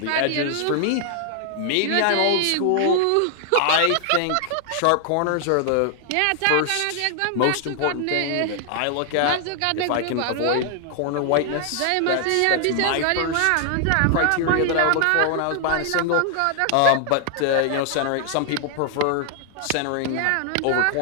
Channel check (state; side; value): different; both; correlation 0.00